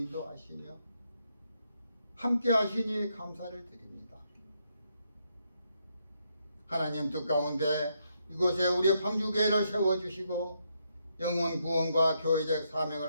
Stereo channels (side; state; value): both; inverted; correlation -0.78